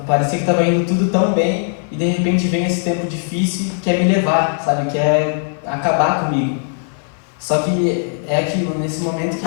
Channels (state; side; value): silent; right; 55 dB below the other